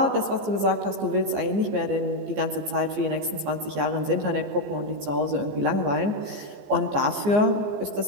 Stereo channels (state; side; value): late; left; 14 ms